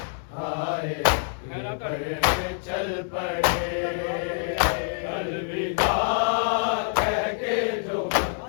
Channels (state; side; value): silent; right; digital silence